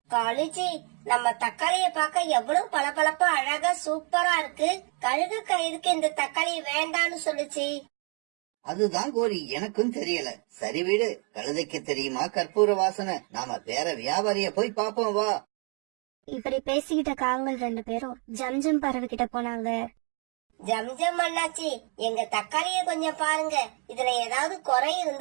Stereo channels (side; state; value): left; quieter; 37.6 dB